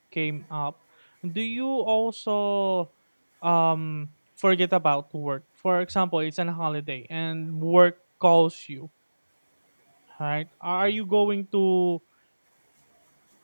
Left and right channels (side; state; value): both; inverted; correlation -1.00